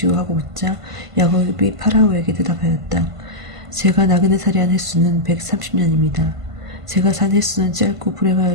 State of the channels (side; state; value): left; late; 1.5 ms